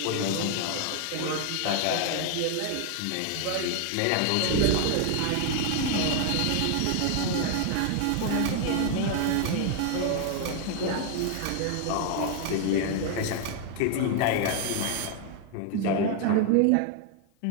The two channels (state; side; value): different; both; correlation 0.00